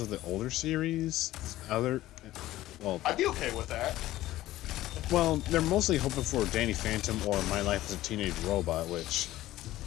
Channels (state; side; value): quieter; right; 15.5 dB